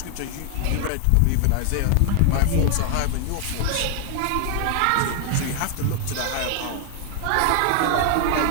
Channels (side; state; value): both; different; correlation 0.00